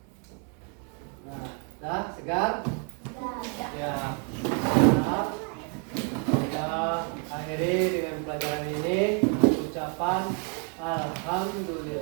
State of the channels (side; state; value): left; quieter; 39.9 dB